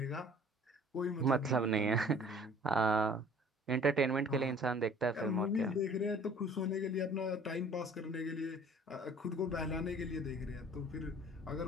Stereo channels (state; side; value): normal; both; correlation 0.51